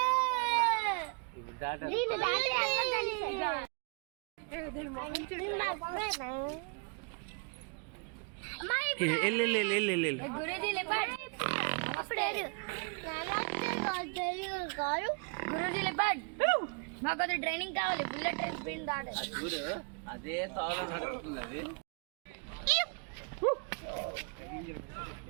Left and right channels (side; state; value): left; quieter; 35.8 dB